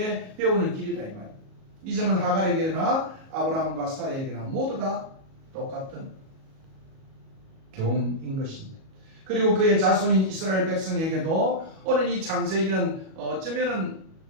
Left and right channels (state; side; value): late; left; 37 ms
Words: 배우는 길이다 이 말이에요. 이 점은 하갈에게나 아브라함과 사라에게나 모두 다 똑같은 교훈인 것입니다. 그리고 그의 자손인 이스라엘 백성에게도 오늘 이 창세기는 어쩌면은